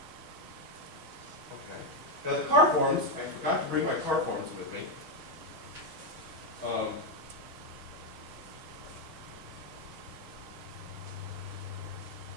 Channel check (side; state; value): left; late; 6.3 ms